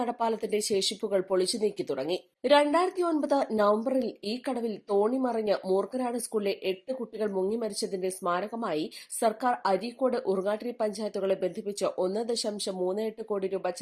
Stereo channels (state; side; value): identical; both; correlation 1.00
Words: ശേഷിപ്പുകൾ പൊളിച്ചു നീക്കി തുടങ്ങി. 2009 നവംബറിൽ ഈ കടവിൽ തോണി മറിഞ്ഞ് മൂർഖനാട് സ്കൂളിലെ 8 കുട്ടികൾ മുങ്ങിമരിച്ചതിന്റെ സ്മാരകമായി സർക്കാർ അരീക്കോട് ഉറുങ്ങാട്ടിരി പഞ്ചായത്തുകളെ ബന്ധിപ്പിച്ച് 1.38 കോടി രൂപ